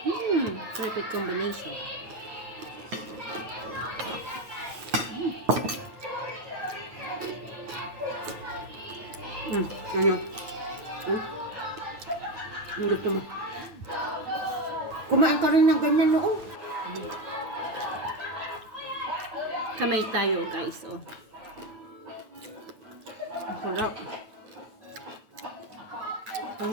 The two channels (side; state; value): left; late; 9.1 ms